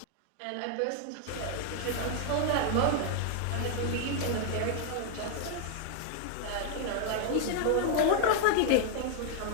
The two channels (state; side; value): different; both; correlation 0.00